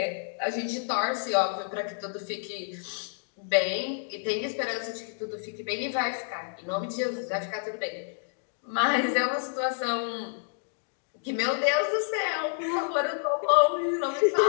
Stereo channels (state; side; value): silent; right; digital silence